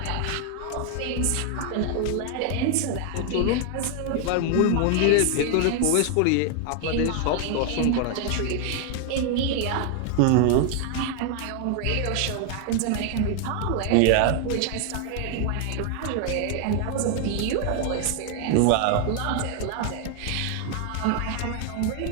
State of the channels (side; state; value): both; different; correlation 0.00